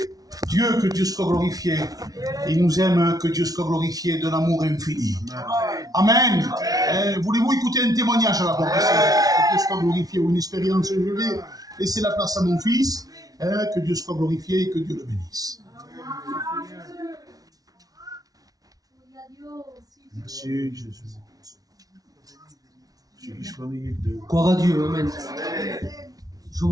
Dieu, que Dieu soit glorifié. Il nous aime, que Dieu soit glorifié d'un amour infini. Amen. Voulez-vous écouter un témoignage à la porte ici? Que Dieu soit glorifié, ou une expérience? Je vais laisser la place à mon fils. Que Dieu soit glorifié et que Dieu le bénisse. Merci Jésus. Gloire à Dieu, amen. Je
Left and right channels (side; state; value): left; late; 0.18 ms